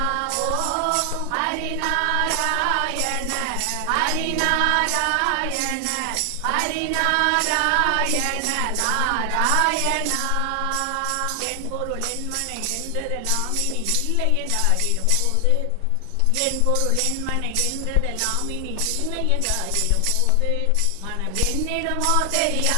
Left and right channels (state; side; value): different; both; correlation 0.00